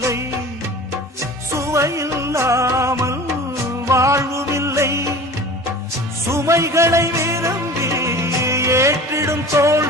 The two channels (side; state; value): both; normal; correlation 0.40